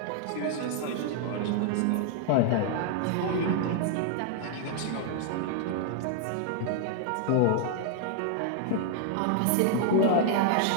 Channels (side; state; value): both; different; correlation 0.00